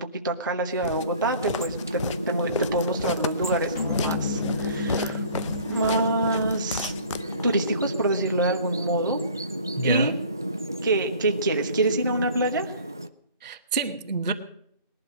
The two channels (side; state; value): both; inverted; correlation -0.48